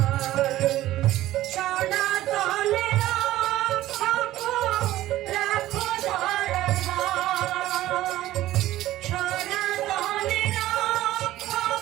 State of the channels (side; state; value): left; quieter; 15.0 dB